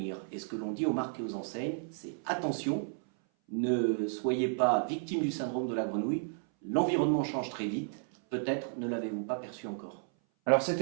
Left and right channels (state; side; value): silent; left; 56 dB below the other